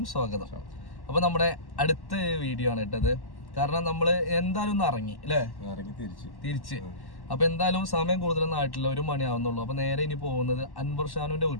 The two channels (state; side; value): late; right; 1.1 ms